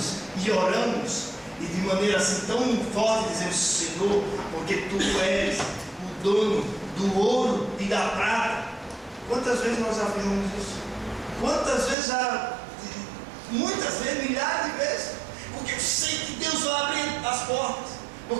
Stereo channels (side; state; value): left; drops out; at 12.0 s